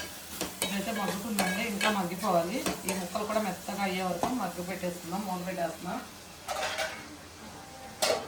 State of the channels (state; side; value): identical; both; correlation 1.00